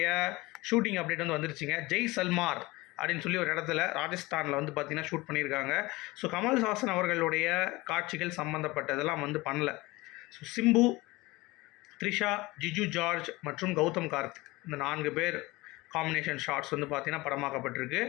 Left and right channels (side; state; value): right; quieter; 21.4 dB